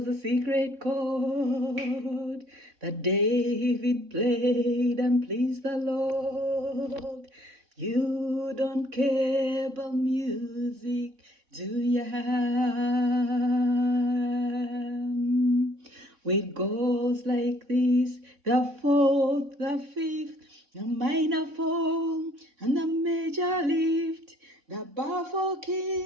a secret chord that David played and pleased the Lord. You don't care about music, do ya? It goes like this: the fourth, the fifth, the minor fall, and the major lift, the baffled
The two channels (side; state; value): left; late; 3.6 ms